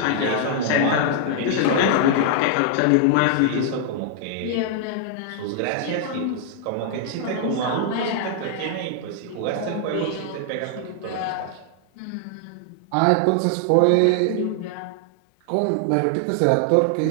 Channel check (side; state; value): both; different; correlation 0.00